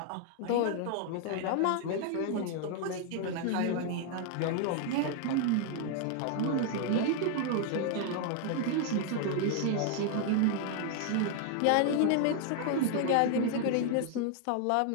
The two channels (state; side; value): different; both; correlation 0.00